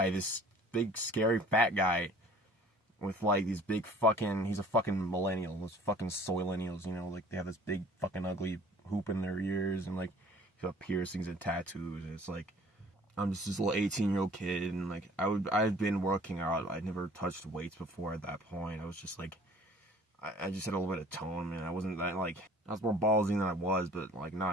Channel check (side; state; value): both; normal; correlation 0.51